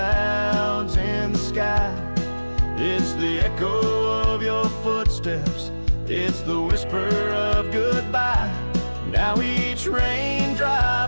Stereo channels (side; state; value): both; inverted; correlation -1.00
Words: in the sky. It's the echo of your footsteps, it's the whisper of goodbye. Now each